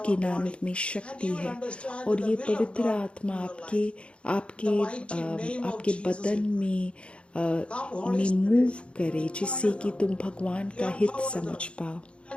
के नाम में शक्ति है। और ये पवित्र आत्मा आपके बदन में मूव करे, जिससे कि तुम भगवान का हित समझ पाओ।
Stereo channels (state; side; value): late; right; 0.058 ms